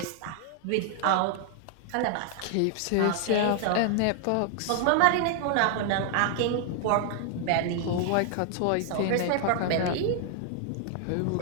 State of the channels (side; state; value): both; different; correlation 0.00